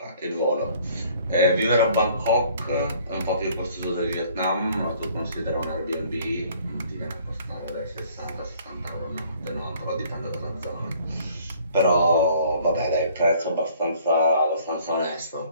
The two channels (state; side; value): inverted; both; correlation -0.57